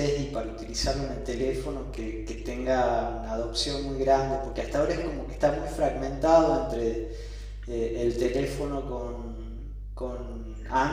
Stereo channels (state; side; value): identical; both; correlation 1.00